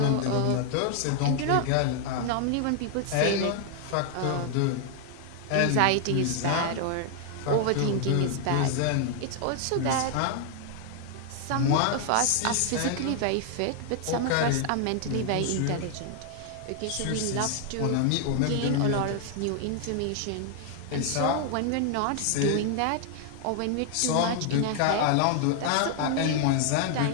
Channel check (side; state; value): both; different; correlation 0.00